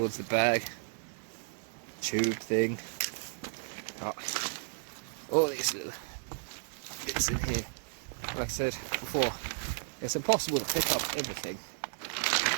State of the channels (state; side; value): silent; left; digital silence